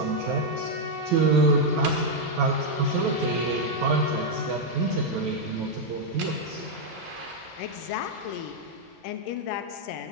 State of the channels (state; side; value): normal; both; correlation -0.02